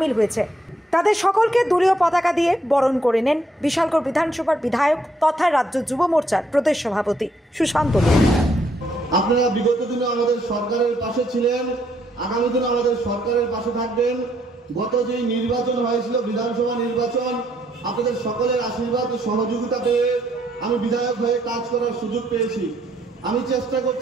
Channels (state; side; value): normal; both; correlation 0.72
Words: হয়েছে। তাদের সকলকে দলীয় পতাকা দিয়ে বরণ করে নেন বিশালগড় বিধানসভার বিধায়ক তথা রাজ্য যুব মোর্চার প্রদেশ সভাপতি সুশান্ত দেব। আপনারা বিগত দিনে আমাদের সরকারের পাশে ছিলেন, আগামী দিনে আমাদের সরকারের পাশে থাকবেন। গত যে নির্বাচন হয়েছিল বিধানসভা নির্বাচন, আপনাদের সকলের আশীর্বাদ ও সহযোগিতা পেয়ে আমি বিধায়ক হয়ে কাজ করার সুযোগ পেয়েছি। আমি চেষ্টা